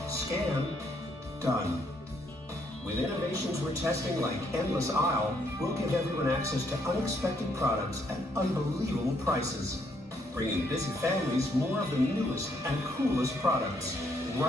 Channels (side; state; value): both; normal; correlation 0.71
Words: scan, done. With innovations we're testing like Endless Aisle, we'll give everyone access to unexpected products at unbelievable prices, bringing busy families more of the newest and coolest products